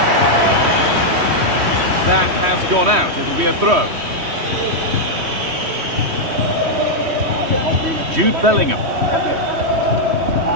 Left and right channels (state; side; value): late; left; 3.1 ms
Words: That has gone out. It'll be a throw. Jude Bellingham.